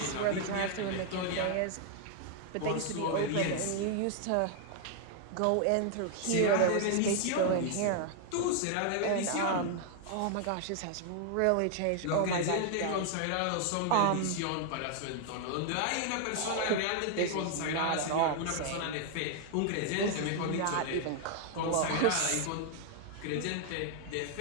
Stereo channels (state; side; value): different; both; correlation 0.00